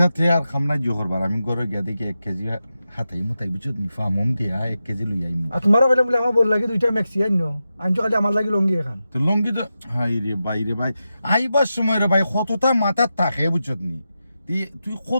তে আর খামনা জোহর বার আমি গরু গিয়া দেখি 1 কেজি হাতাই মুতাই বুঝছ নি ফামম দিয়া 1 কেজি লই আইম আর তোমারও কইলাম বলে আমার বল লাগে দুইটা ম্যাক্সি আইনো আনছো খালি আমার লাগি লঙ্গি এখান তো লঙ্গি তো হাই রে ভাই আইবার সময় রে ভাই কতটা মাথা থাকে বুঝছত নি তুই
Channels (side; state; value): both; inverted; correlation -0.90